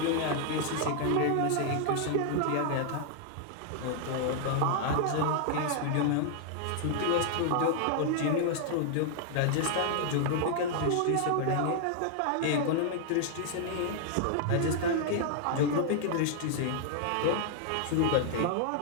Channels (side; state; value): both; different; correlation -0.01